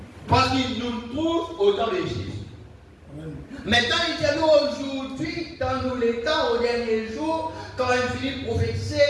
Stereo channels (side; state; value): both; identical; correlation 1.00